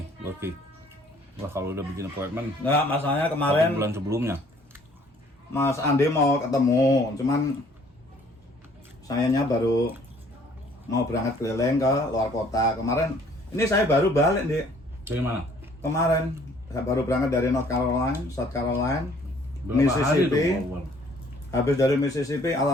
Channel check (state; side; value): normal; both; correlation 0.58